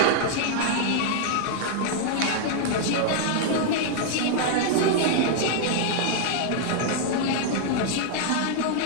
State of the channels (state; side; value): different; both; correlation 0.00